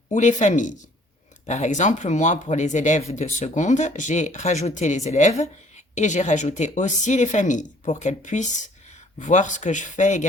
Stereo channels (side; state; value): both; normal; correlation 0.57